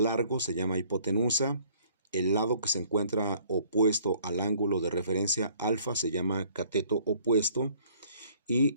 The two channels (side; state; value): both; inverted; correlation -0.58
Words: se llama hipotenusa. El lado que se encuentra opuesto al ángulo de referencia alfa se llama cateto opuesto. Y